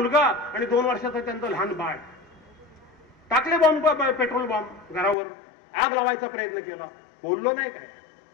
आणि 2 वर्षाचं त्यांचं लहान बाळ. टाकले बॉम्ब, पेट्रोल बॉम्ब घरावर. आग लावायचा प्रयत्न केला. बोललो नाही काय?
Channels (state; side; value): drops out; right; at 5.2 s